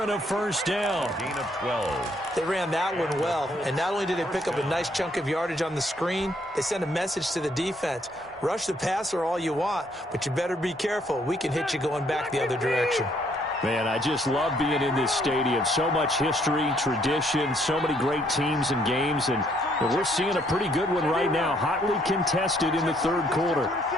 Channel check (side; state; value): both; normal; correlation 0.68